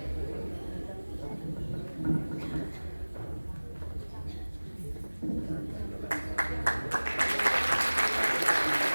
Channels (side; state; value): both; inverted; correlation -1.00